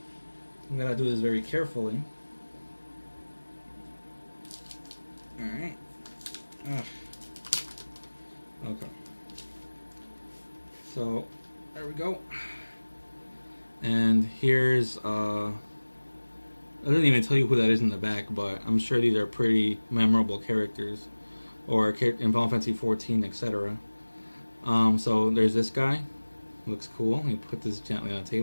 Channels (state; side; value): inverted; both; correlation -1.00